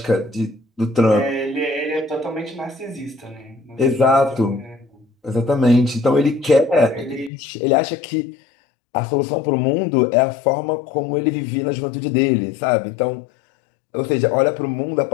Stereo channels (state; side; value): drops out; right; at 7.3 s